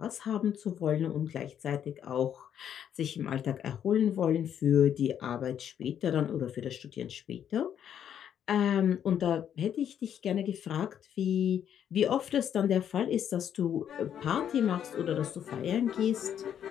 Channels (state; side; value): quieter; right; 9.3 dB